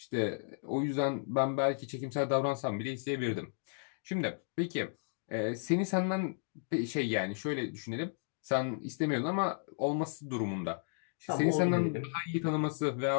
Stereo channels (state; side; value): silent; right; digital silence